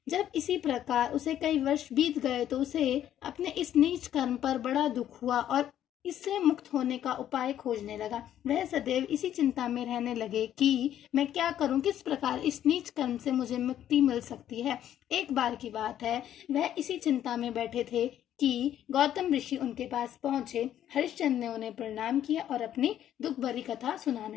जब इसी प्रकार उसे कई वर्ष बीत गए तो उसे अपने इस नीच कर्म पर बड़ा दुख हुआ और इससे मुक्त होने का उपाय खोजने लगा। वह सदैव इसी चिंता में रहने लगे कि मैं क्या करूं, किस प्रकार इस नीच कर्म से मुझे मुक्ति मिल सकती है। एक बार की बात है, वह इसी चिंता में बैठे थे कि गौतम ऋषि उनके पास पहुंचे। हरिश्चंद्र ने उन्हें प्रणाम किया और अपनी दुख भरी कथा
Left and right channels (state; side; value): quieter; right; 11.1 dB